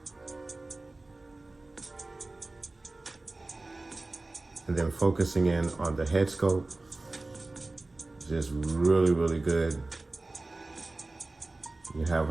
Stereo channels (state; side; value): quieter; left; 3.1 dB